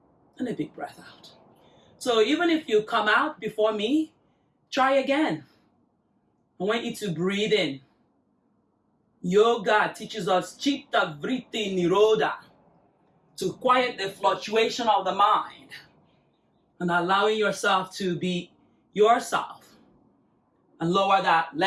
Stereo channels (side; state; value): both; identical; correlation 1.00